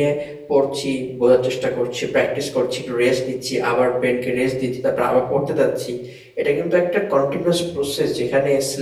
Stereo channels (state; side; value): identical; both; correlation 1.00